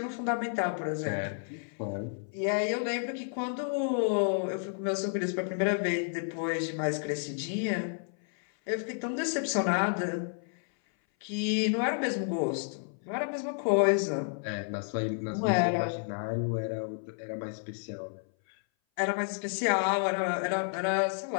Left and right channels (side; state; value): right; silent; 57 dB below the other